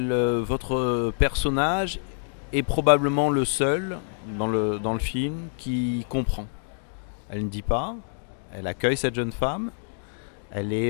votre personnage est probablement le seul dans le film qui comprend. Elle ne dit pas, elle accueille cette jeune femme, elle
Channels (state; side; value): silent; right; 61 dB below the other